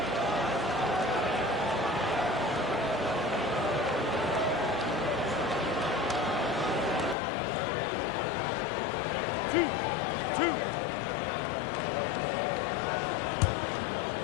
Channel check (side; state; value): right; drops out; at 7.2 s